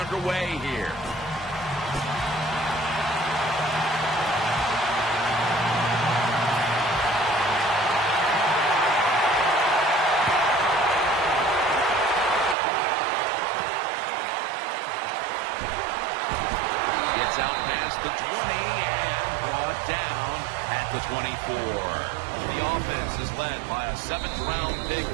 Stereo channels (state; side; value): drops out; left; at 12.6 s